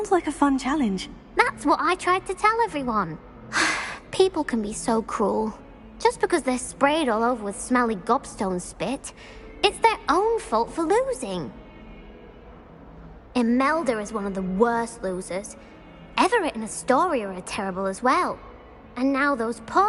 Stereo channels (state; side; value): identical; both; correlation 1.00